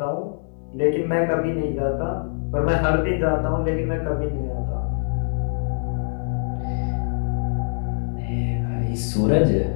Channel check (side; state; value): right; silent; digital silence